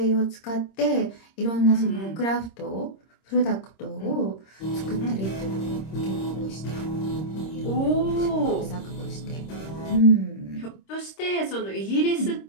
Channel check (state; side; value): late; right; 26 ms